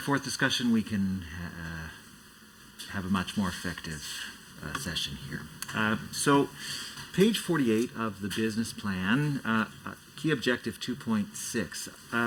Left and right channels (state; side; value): identical; both; correlation 1.00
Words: forth discussion, we can have a much more effective session here. So, page 48 of the business plan, key objective